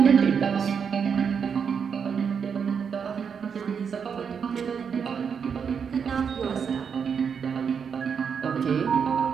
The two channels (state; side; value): quieter; left; 6.7 dB